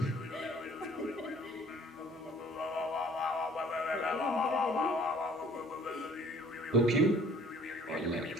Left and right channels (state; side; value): normal; both; correlation 0.54